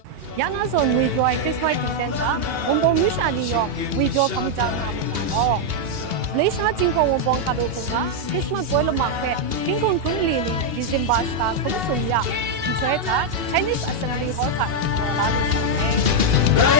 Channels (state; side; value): late; left; 2.8 ms